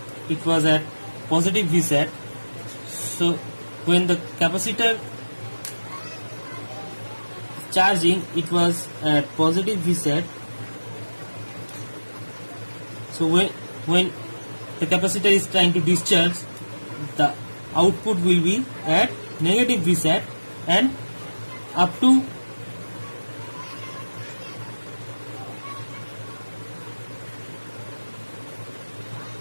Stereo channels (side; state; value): both; inverted; correlation -1.00